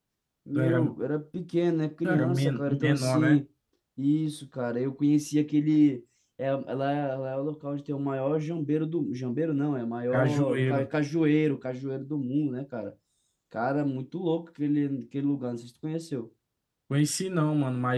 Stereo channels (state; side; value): identical; both; correlation 1.00